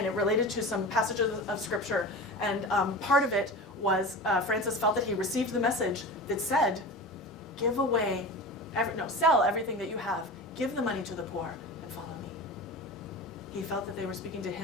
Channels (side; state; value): both; normal; correlation 0.31